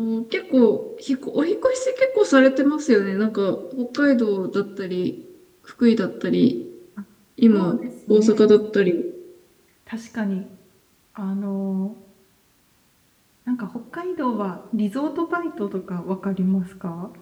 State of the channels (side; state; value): both; identical; correlation 1.00